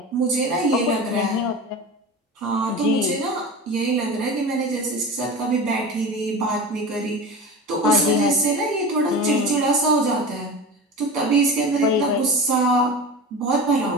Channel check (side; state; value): both; normal; correlation 0.30